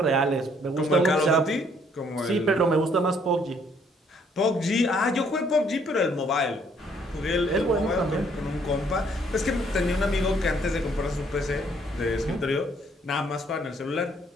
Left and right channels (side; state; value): both; normal; correlation 0.65